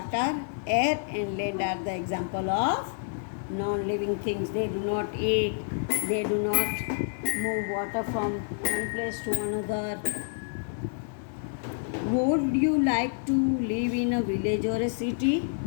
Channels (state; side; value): silent; right; digital silence